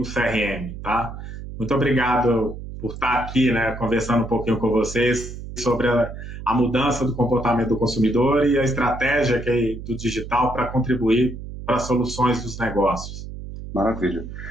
CRM, tá? Muito obrigado por estar aqui, né, conversando um pouquinho com vocês sobre a mudança do comportamento do consumidor e a estratégia do digital para contribuir para as soluções dos negócios. Maravilha.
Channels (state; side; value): noise; right; hum, 10 dB below the sound